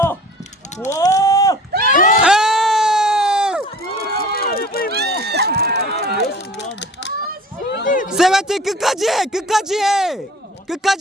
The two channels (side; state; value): both; normal; correlation 0.44